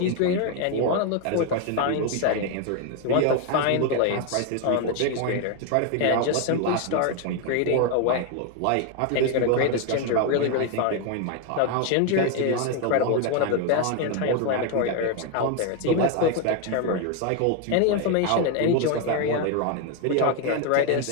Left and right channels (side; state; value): both; different; correlation 0.01